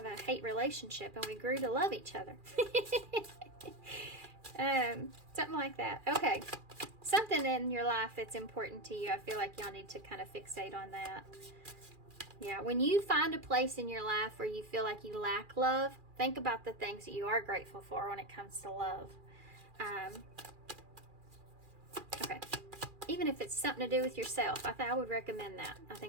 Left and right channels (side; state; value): left; late; 2.4 ms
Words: a hate relationship, and we grew to love each other. Something like that. Okay. Something in your life that's important to you. I feel like y'all need to kind of fixate on that. Yeah, when you find a place in your life where you feel like you lack love, think about the things that you are grateful for when it comes to love. Okay. Even if it's something to do with yourself, I would recommend that. I